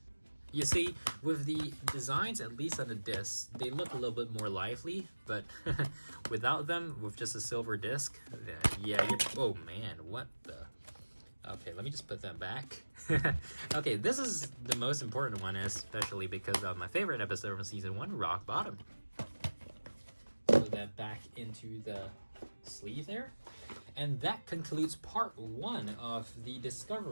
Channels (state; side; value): inverted; both; correlation -1.00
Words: You see, with the designs, at least on the disc, they look a little bit more lively, but without them, with just a silver disc, yeah, oh man, what the... Okay, let me just put that back. Okay, this is the most important one, especially because of my favorite episode from season 1, Rock Bottom. Put that back into the sleeve there. And that concludes part 1 of the